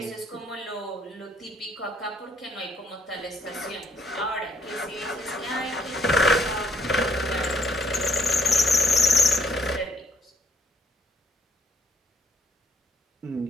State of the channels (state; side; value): normal; both; correlation 0.69